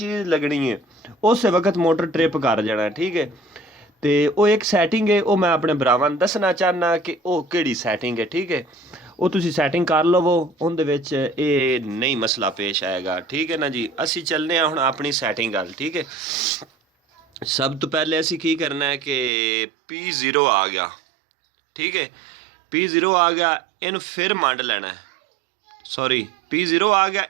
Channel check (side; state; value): left; drops out; at 19.3 s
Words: लगनी है उस वक्त मोटर ट्रिप कर जाना है ठीक है। तो वो एक सैटिंग है वो मैं अपने भरावां नूं दसना चाहना कि वो किहड़ी सैटिंग है ठीक है। ਉਹ ਤੁਸੀਂ ਸੈਟਿੰਗ ਕਰ ਲਵੋ ਉਹਦੇ ਵਿੱਚ ਇਹ ਨਹੀਂ ਮਸਲਾ ਪੇਸ਼ ਆਏਗਾ ਠੀਕ ਹੈ ਨਾ ਜੀ। ਅਸੀਂ ਚੱਲਨੇ ਆ ਹੁਣ ਆਪਣੀ ਸੈਟਿੰਗ ਗੱਲ ਠੀਕ ਹੈ। ਸਭ ਤੋਂ ਪਹਿਲੇ ਅਸੀਂ ਕੀ ਕਰਨਾ ਹੈ ਕਿ P0 ਆ ਗਿਆ ਠੀਕ ਹੈ। P0 ਆ ਗਿਆ ਇਹਨੂੰ ਫਿਰ ਮੰਡ ਲੈਣਾ ਹੈ ਸੌਰੀ P0 ਆ ਗਿਆ